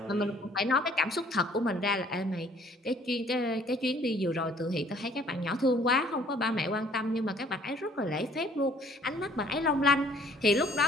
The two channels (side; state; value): both; normal; correlation 0.58